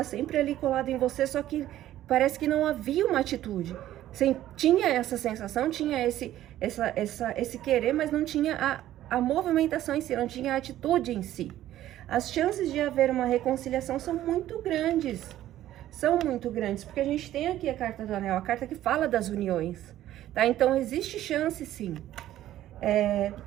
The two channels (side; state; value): left; quieter; 13.3 dB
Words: sempre ali colado em você, só que parece que não havia uma atitude. Tinha essa sensação, tinha esse querer, mas não tinha a movimentação em si, não tinha a atitude em si. As chances de haver uma reconciliação são muito grandes, porque a gente tem aqui a carta do anel, a carta que fala das uniões. Tá? Então, existe chance, sim.